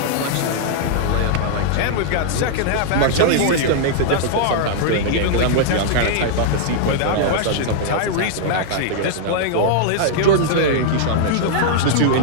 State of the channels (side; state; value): both; different; correlation -0.01